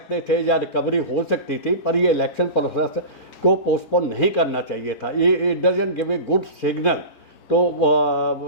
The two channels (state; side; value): late; right; 4.5 ms